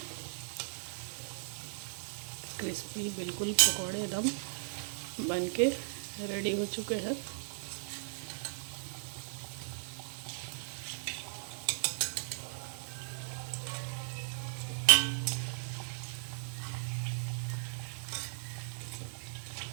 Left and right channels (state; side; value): silent; left; digital silence